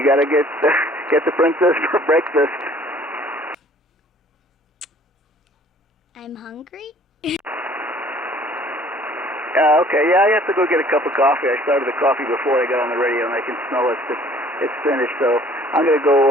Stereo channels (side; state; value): both; normal; correlation 0.54